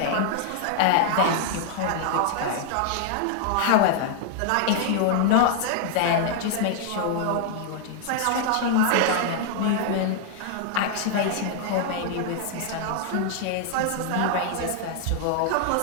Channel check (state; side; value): different; both; correlation -0.01